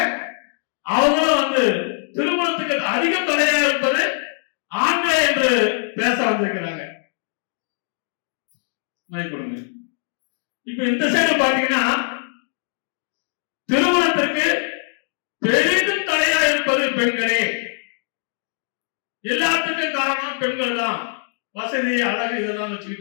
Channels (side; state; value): right; silent; digital silence